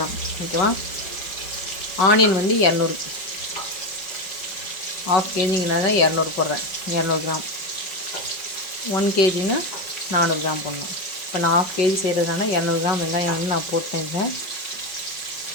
ஓகேவா. ஆனியன் வந்து 200, 1/2 kgனால 200 போடுறேன். 200 கிராம். 1 kgனா 400 கிராம் போடணும். இப்போ நான் 1/2 kg செய்கிறதுனால 200 கிராம் வெங்காயம் வந்து நான் போட்டேன்.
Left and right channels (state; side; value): late; right; 5.3 ms